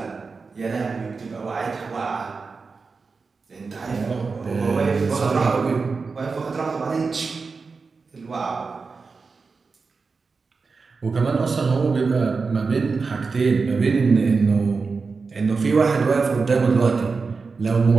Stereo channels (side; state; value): left; quieter; 4.6 dB